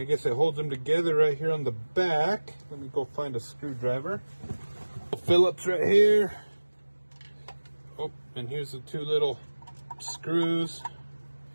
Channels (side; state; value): both; inverted; correlation -1.00